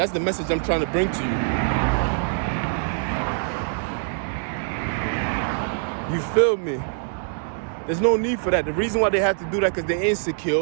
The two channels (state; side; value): silent; left; digital silence